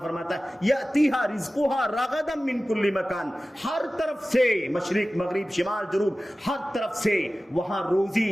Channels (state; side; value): normal; both; correlation 0.96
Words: فرماتا ہے یاتیھا رزقھا رغدا من کل مکان، ہر طرف سے، مشرق مغرب شمال جنوب، ہر طرف سے وہاں